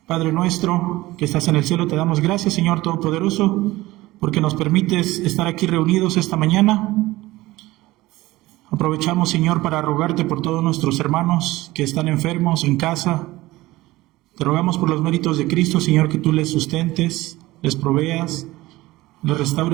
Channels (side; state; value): left; quieter; 18.5 dB